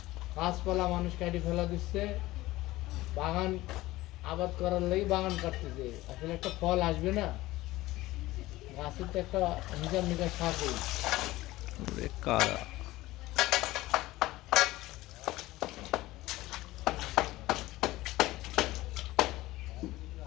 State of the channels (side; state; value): right; quieter; 17.9 dB